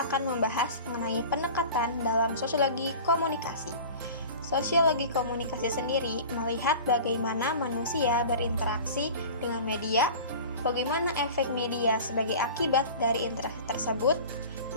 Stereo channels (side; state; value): both; inverted; correlation -0.38